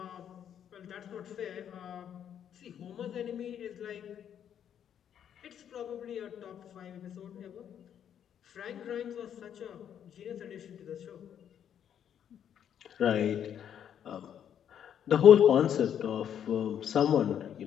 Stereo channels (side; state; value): right; quieter; 9.2 dB